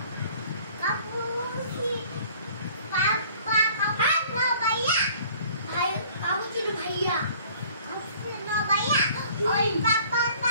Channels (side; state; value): both; inverted; correlation -0.53